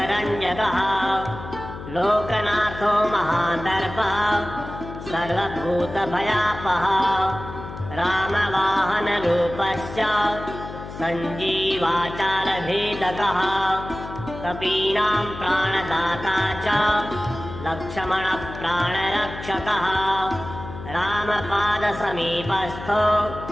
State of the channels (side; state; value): left; noise; hum, 11 dB below the sound